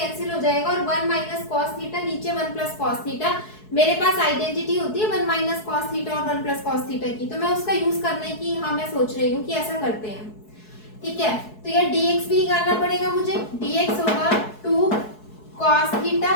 हो जाएगा और 1 माइनस कॉस थीटा, नीचे 1 प्लस कॉस थीटा। मेरे पास आइडेंटिटी होती है 1 माइनस कॉस थीटा और 1 प्लस कॉस थीटा की, तो मैं उसका यूज करने की हाँ मैं सोच रही हूँ कि ऐसा करते हैं, ठीक है। तो ये dx भी निकालना पड़ेगा मुझे, dx होगा 2 कॉस थीटा,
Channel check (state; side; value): late; right; 4.7 ms